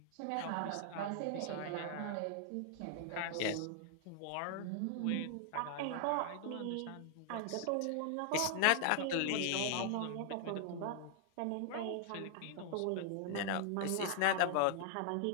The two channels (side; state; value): both; different; correlation 0.00